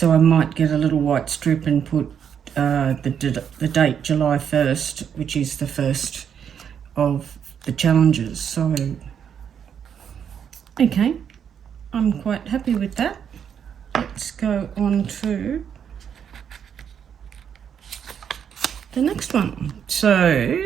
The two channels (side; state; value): left; quieter; 8.1 dB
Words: I might get a little white strip and put the date July 1st, which is the first of the challenges. So, okay, I'm quite happy with that. Let's go on to the next one. So,